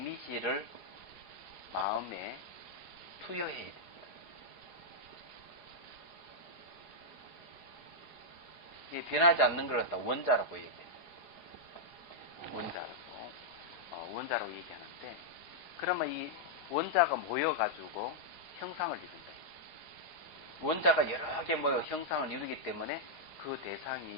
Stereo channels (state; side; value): late; right; 4.8 ms